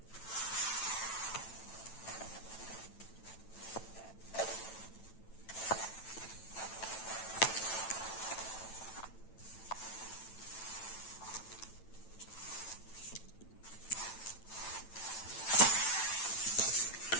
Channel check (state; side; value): late; right; 9.0 ms